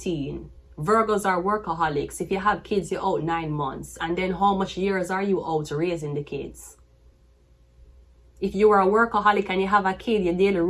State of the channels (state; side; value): identical; both; correlation 1.00